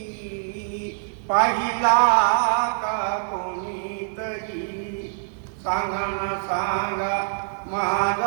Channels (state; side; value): silent; left; digital silence